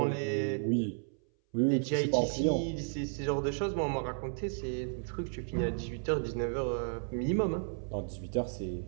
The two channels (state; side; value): silent; left; 56 dB below the other